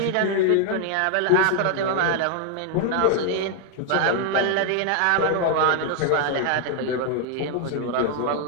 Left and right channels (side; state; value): both; different; correlation 0.00